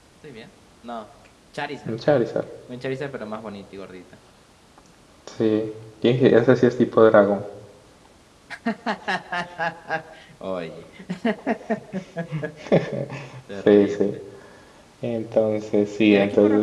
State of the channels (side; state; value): both; identical; correlation 1.00